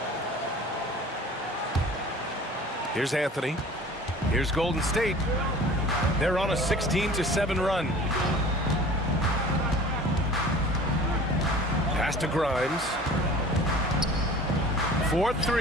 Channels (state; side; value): normal; both; correlation 0.44